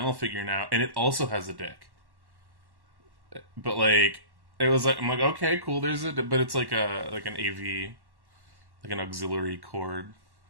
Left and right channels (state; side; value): late; left; 1.1 ms